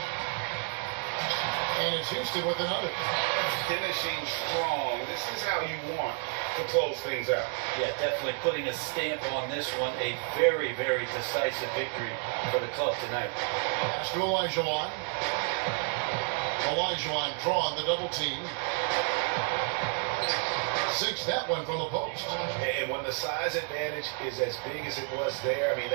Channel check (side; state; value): left; quieter; 39.8 dB